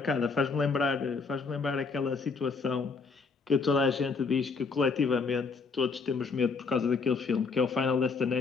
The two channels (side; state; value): right; quieter; 4.6 dB